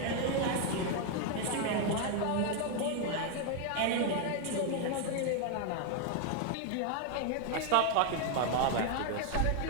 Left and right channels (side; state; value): both; different; correlation 0.01